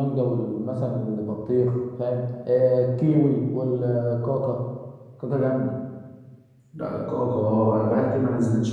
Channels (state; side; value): identical; both; correlation 1.00